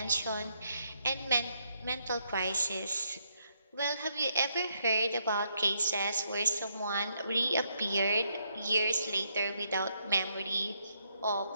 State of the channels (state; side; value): inverted; both; correlation -0.76